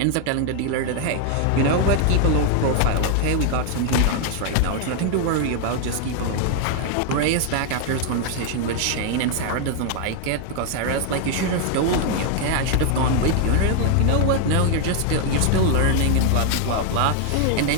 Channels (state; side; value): different; both; correlation 0.00